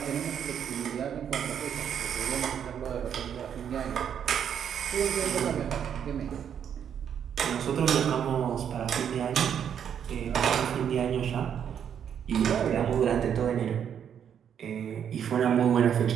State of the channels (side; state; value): left; quieter; 8.6 dB